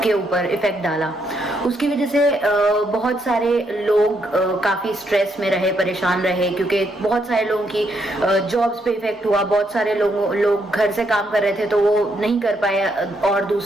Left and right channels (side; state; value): both; normal; correlation 0.76